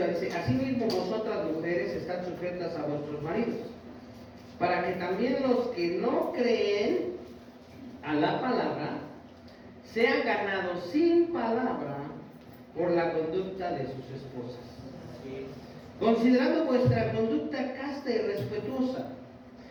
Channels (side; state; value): both; identical; correlation 1.00